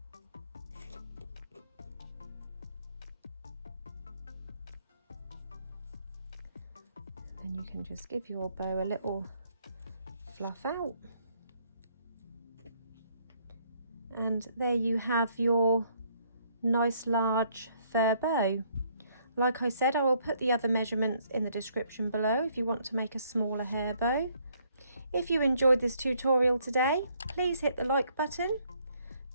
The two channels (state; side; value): inverted; both; correlation -0.67